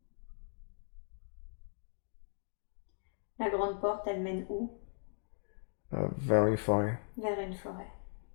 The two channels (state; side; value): silent; right; digital silence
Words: La grande porte, elle mène où? Vers une forêt. Vers une forêt.